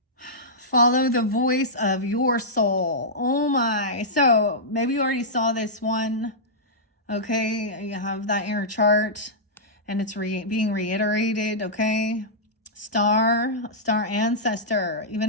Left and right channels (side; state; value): both; normal; correlation -0.13